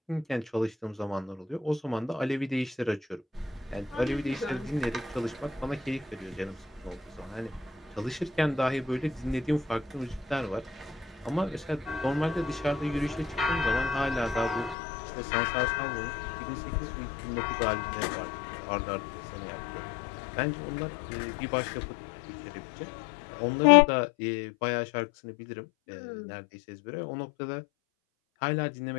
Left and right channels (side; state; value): right; drops out; at 14.8 s